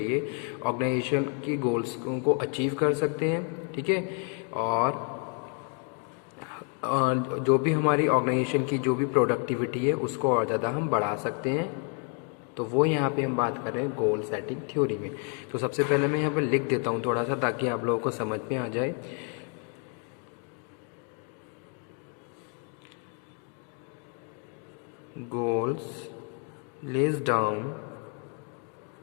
ऑर्गेनाइजेशन की गोल्स को अचीव कर सकते हैं, ठीक है। और जो भी हमारी ऑर्गेनाइजेशन की जो भी प्रोडक्टिविटी है उसको और ज़्यादा हम बढ़ा सकते हैं। तो वो यहाँ पे हम बात कर रहे हैं गोल सेटिंग थ्योरी में। तो सबसे पहले मैं यहाँ पर लिख देता हूँ थोड़ा सा, ताकि आप लोगों को समझ में आ जाए। Goals lays down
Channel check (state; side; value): quieter; right; 37.2 dB